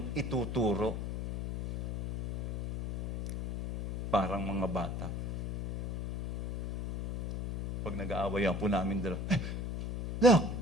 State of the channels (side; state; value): left; noise; hum, 2 dB below the sound